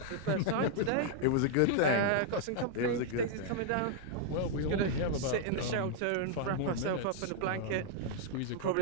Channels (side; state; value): both; different; correlation 0.00